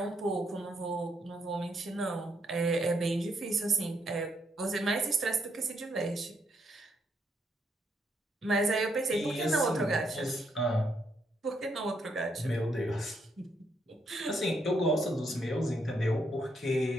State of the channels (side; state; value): both; normal; correlation 0.76